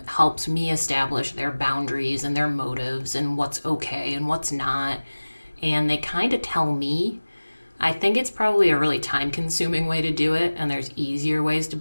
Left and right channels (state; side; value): inverted; both; correlation -1.00